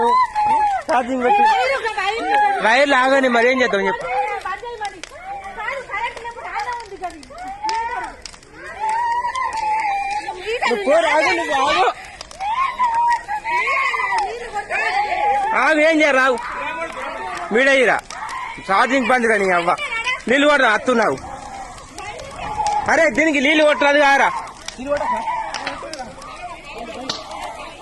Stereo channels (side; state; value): both; identical; correlation 1.00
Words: ఛార్జింగ్ పెట్టి వైర్లు ఆగని మరి ఏం చేద్దాం చెప్పు ఆగు ఏం చేయరు రావు మీడయ్యిరా ఛార్జింగ్ బంద్ కానీ అవ్వ నీళ్ళు కొట్టరా అత్తున్నావు అరే దీనికి నీళ్ళు కొట్టరాదు కారా